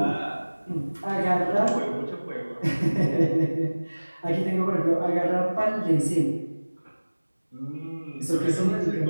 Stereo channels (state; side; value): inverted; both; correlation -1.00